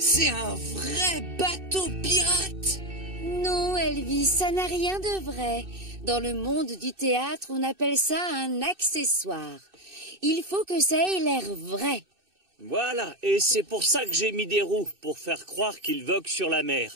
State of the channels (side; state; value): left; late; 2.6 ms